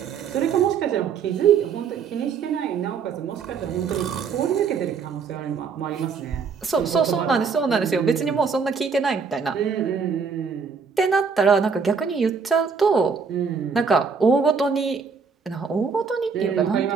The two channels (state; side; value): quieter; left; 5.7 dB